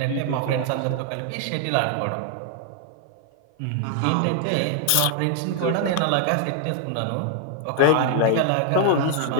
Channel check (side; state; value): both; different; correlation 0.00